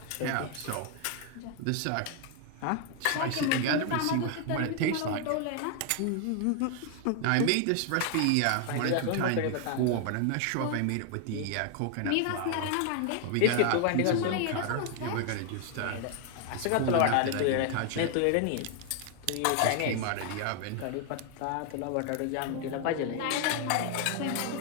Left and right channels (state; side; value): different; both; correlation 0.00